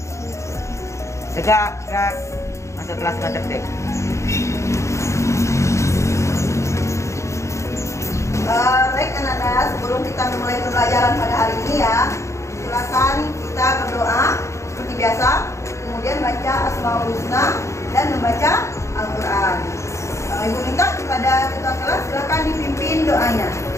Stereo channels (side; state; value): right; late; 0.14 ms